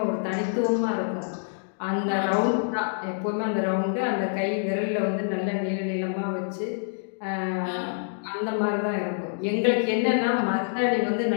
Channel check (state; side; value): silent; right; digital silence